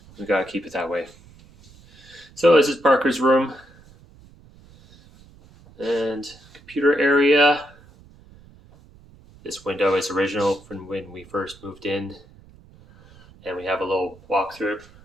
We gotta keep it that way. So this is Parker's room and computer area. This window is original from when we first moved in, and we have a little walkthrough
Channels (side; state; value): right; noise; rumble, 25 dB below the sound